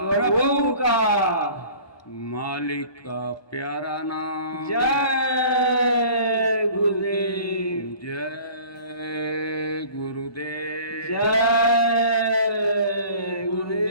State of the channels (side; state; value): right; late; 1.2 ms